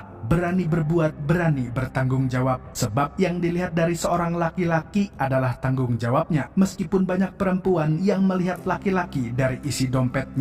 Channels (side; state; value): both; identical; correlation 1.00